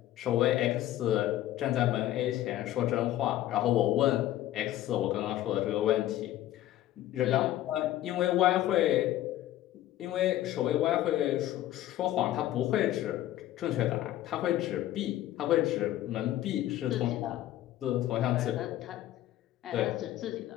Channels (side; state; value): right; quieter; 13.8 dB